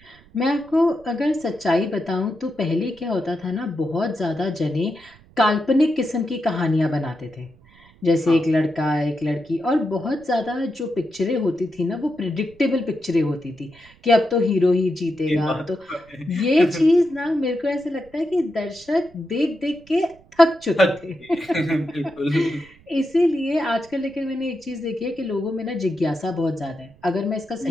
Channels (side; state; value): right; noise; rumble, 27 dB below the sound